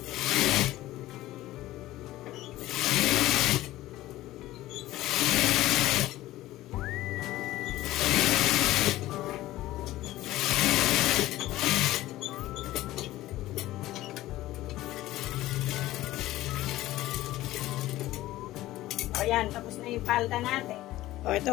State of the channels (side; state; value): right; quieter; 16.1 dB